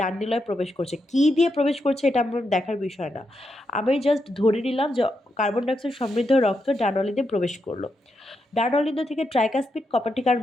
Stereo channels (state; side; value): normal; both; correlation 0.84